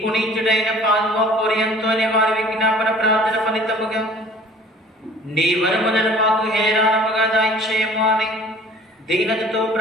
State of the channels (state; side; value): normal; both; correlation 0.49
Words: పాల్వా పోరియంతోని వారి విజ్ఞాపన ప్రార్థన ఫలితముగా నీ వరములను మాకు హేరాళముగా దయచేయము అని దీనతతో